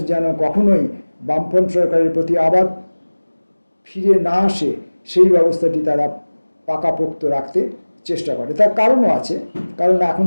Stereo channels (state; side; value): inverted; both; correlation -1.00